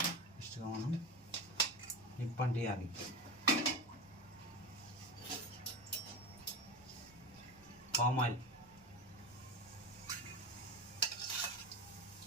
ఇష్టంగా మనం నిప్పంటియాలి. పామ్ ఆయిల్,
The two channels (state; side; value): noise; right; rumble, 26 dB below the sound